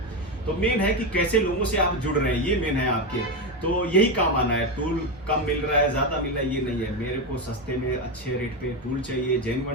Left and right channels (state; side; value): normal; both; correlation 0.12